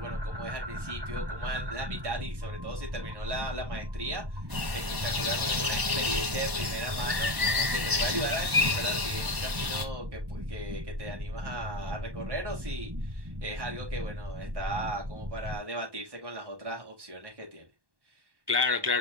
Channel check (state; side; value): late; left; 1.2 ms